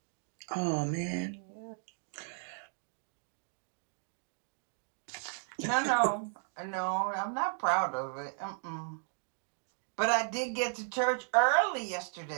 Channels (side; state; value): left; silent; 54 dB below the other